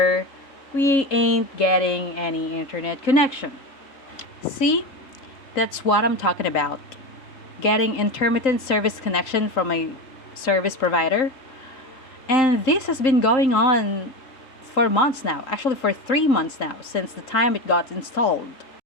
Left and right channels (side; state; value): right; late; 3.8 ms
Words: we ain't getting any internet connection. See, that's what I'm talking about. Getting intermittent service connection from a service provider. And this has been going on for months now, actually for 3 months now, since the time it got installed.